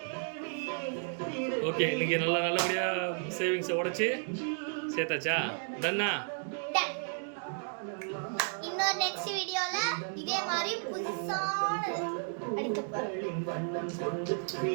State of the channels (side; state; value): left; silent; 56 dB below the other